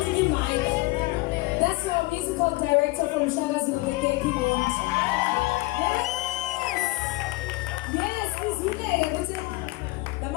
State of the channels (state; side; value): quieter; right; 22.5 dB